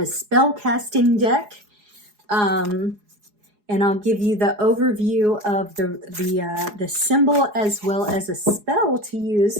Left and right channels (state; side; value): late; left; 4.8 ms